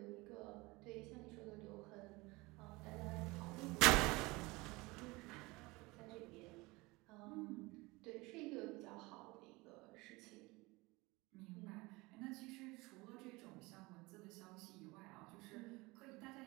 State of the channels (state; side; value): quieter; left; 23.3 dB